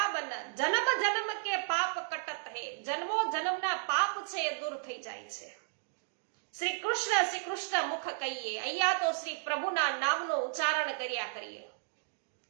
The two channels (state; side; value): silent; left; digital silence